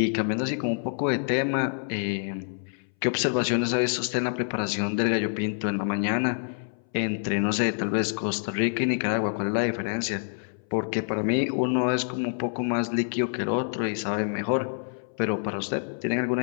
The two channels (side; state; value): right; silent; 59 dB below the other